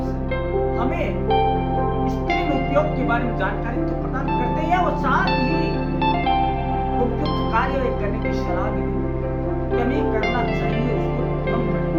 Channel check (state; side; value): identical; both; correlation 1.00